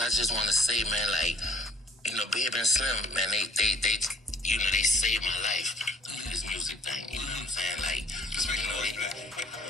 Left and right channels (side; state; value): both; normal; correlation 0.56